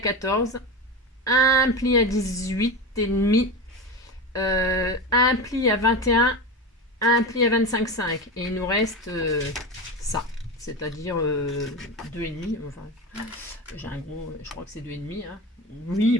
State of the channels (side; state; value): both; normal; correlation 0.23